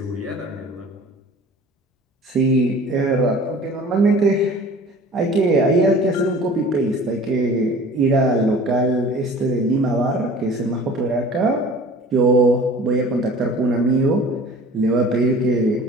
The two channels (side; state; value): both; normal; correlation 0.44